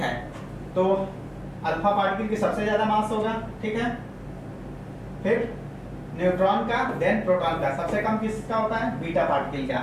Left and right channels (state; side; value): identical; both; correlation 1.00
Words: तो अल्फा पार्टिकल की सबसे ज्यादा मास होगा, ठीक है। फिर न्यूट्रॉन का, देन प्रोटॉन का, सबसे कम किसका होता है बीटा पार्टिकल का,